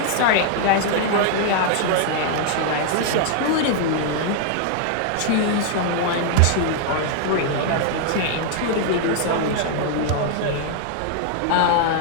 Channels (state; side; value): different; both; correlation 0.00